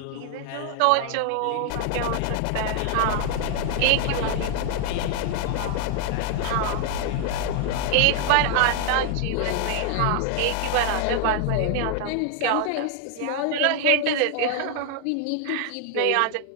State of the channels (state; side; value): different; both; correlation 0.00